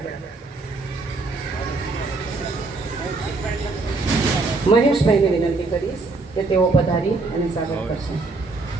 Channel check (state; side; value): quieter; left; 3.6 dB